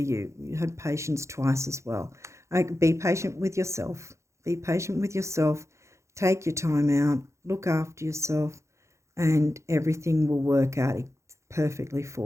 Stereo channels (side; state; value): left; late; 0.14 ms